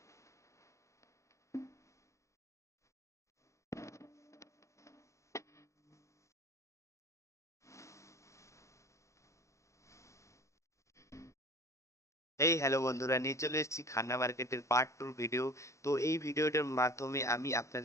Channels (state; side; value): late; right; 0.15 ms